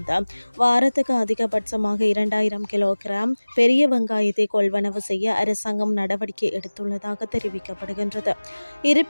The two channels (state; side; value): inverted; both; correlation -1.00